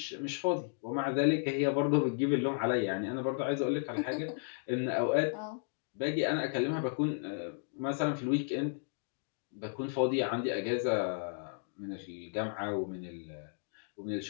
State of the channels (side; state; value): right; silent; digital silence